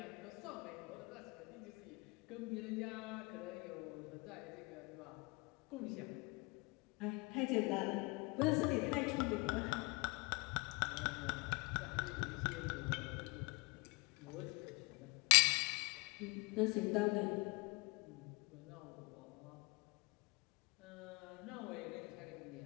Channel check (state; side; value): quieter; right; 27.6 dB